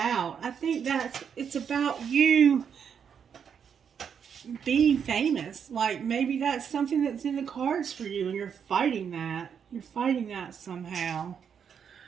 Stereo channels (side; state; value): left; quieter; 7.4 dB